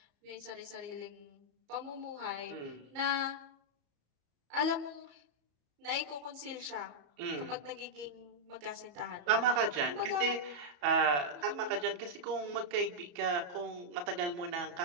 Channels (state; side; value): late; left; 34 ms